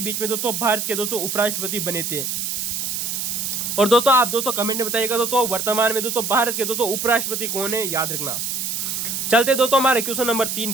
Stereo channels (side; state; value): right; noise; hiss, 2 dB below the sound